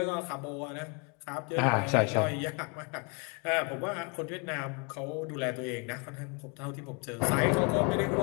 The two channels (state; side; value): quieter; right; 33.1 dB